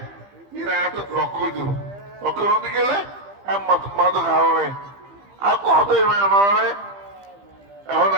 এরা এত লক্ষ্য লক্ষ্য গেলে মাদক হারাবে আর কতই মানে এখন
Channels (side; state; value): left; late; 15 ms